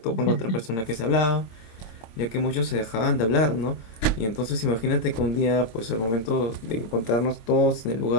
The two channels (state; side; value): late; right; 26 ms